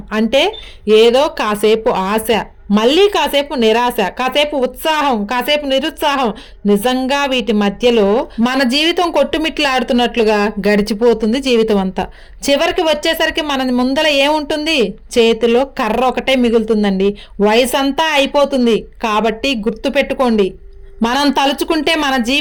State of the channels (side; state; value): both; identical; correlation 1.00